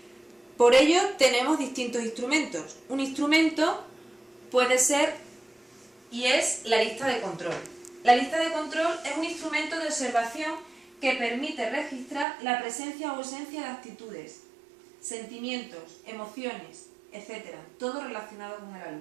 Por ello tenemos distintos instrumentos. Un instrumento puede ser y es la lista de control. La lista de control es un instrumento de observación que permite registrar la presencia o ausencia de actitudes, sentimientos, emociones, etc., todo relacionado con el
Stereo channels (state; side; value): drops out; left; at 12.2 s